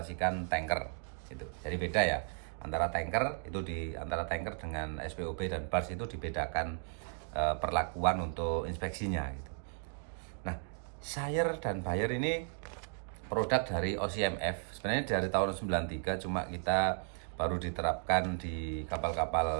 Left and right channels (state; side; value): silent; left; 54 dB below the other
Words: tanker gitu. Jadi beda ya, antara tanker dengan SPOB dan bars itu dibedakan perlakuan untuk inspeksinya gitu. Nah, seller dan buyer ini produk dari OCMF. Sebenarnya dari tahun 93, cuma kita baru diterapkan di